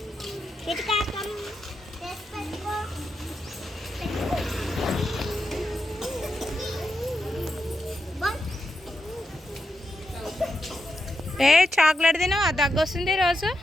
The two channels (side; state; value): both; normal; correlation 0.86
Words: ఏ చాక్లెట్ తిన్నావు? అది దగ్గు వస్తుంది రోజు.